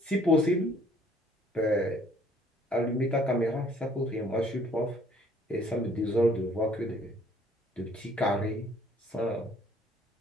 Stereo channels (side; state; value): both; normal; correlation 0.59